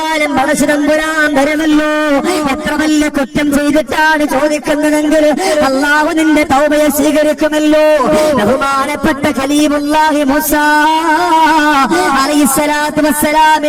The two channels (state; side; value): identical; both; correlation 1.00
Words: പടച്ചതമ്പുരാൻ തരുമല്ലോ. എത്ര വലിയ കുറ്റം ചെയ്തിട്ടാണ് ചോദിക്കുന്നതെങ്കിൽ അല്ലാഹു നിന്റെ തൗബയെ സ്വീകരിക്കുമല്ലോ. ബഹുമാനപ്പെട്ട ഖലീലുല്ലാഹി മൂസാ അലൈഹിസ്സലാത്തു